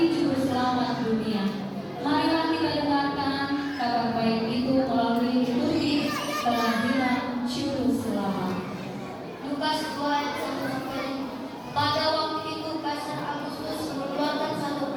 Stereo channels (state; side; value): identical; both; correlation 1.00